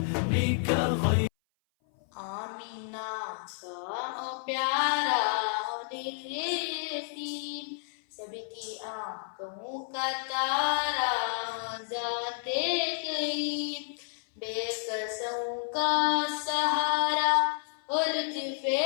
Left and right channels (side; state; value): right; silent; 56 dB below the other